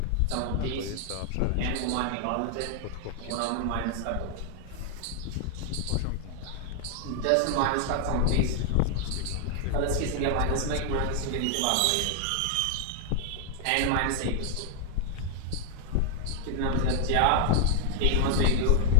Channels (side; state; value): both; different; correlation 0.00